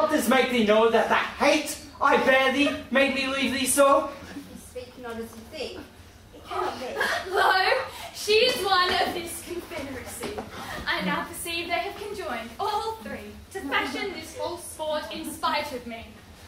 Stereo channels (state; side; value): identical; both; correlation 1.00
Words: this make thee know that the hate I bear thee made me leave thee so? You speak not as you think. It cannot be. Lo, she is one of this confederacy. I now perceive they have conjoined, all three, to fashion this false sport in spite of me.